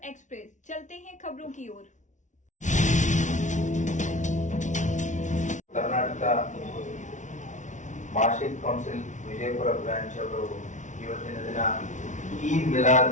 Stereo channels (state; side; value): late; right; 0.36 ms